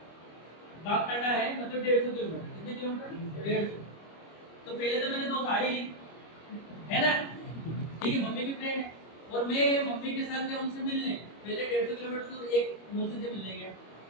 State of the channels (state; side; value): late; right; 25 ms